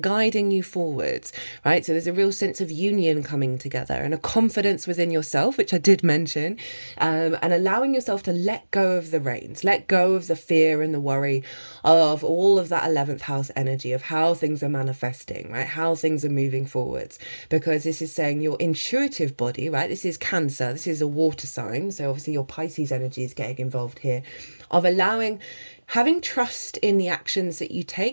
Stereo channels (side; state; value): both; inverted; correlation -1.00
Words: you forwards, right? So there's a real sense of union coming together and a confidence within yourself, which I did mention, and allowing yourself to let go of the reins, let go of the fear and the worry of all of that 11th house energy of how things are manifesting, right? How things are moving forwards, because this is saying your intuitive body, right? This is Cancer, this is a water sign. So obviously your Pisces energy is getting involved here, of having trust in the actions that you